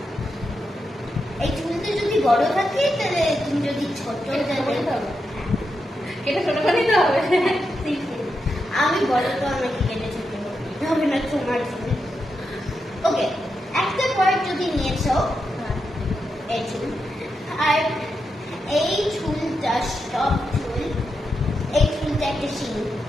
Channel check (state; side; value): normal; both; correlation 0.86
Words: এই চুলটা যদি বড় থাকে তাহলে তুমি যদি ছোট এটা ছোট করে নিতে হবে। আমি বড় তো আমাকে কেটে ছোট হবে না তোমার চুল। ওকে, একটা পার্ট যদি নিয়েছো এই চুল, আর এই চুলটা সব চুল, এই চুলটা একটা শিং,